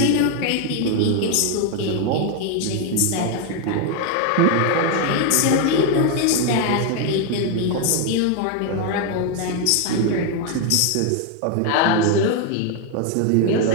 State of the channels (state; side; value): different; both; correlation 0.01